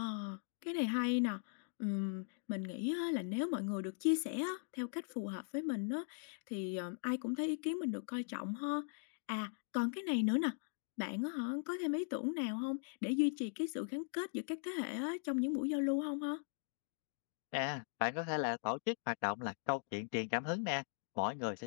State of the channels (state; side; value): silent; right; digital silence